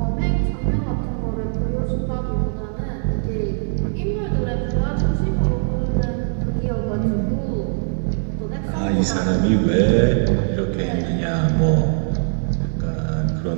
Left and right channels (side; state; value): left; silent; digital silence